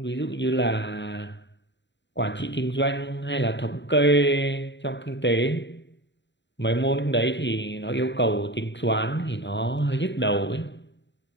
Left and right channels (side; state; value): right; late; 0.52 ms